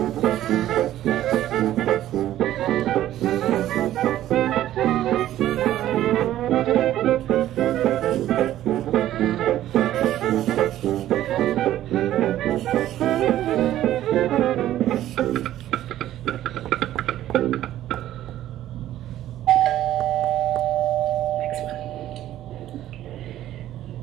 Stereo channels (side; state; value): left; quieter; 13.1 dB